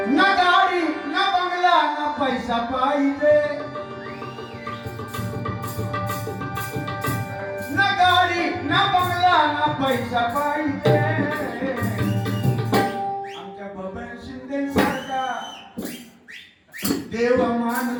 ना गाडी ना बंगला ना पैसा पाहिजे, ना गाडी ना बंगला ना पैसा पाहिजे. आमच्या बबन शिंदे सारखा देव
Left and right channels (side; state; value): both; identical; correlation 1.00